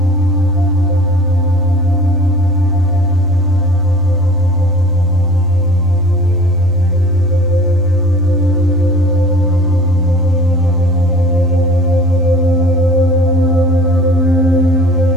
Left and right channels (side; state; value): both; normal; correlation 0.45